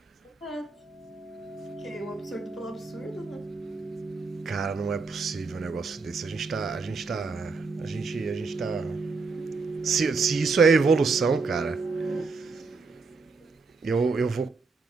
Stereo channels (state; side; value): quieter; left; 4.4 dB